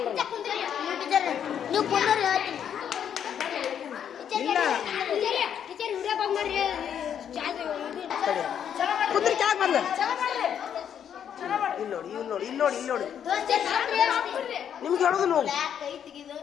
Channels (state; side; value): quieter; right; 8.8 dB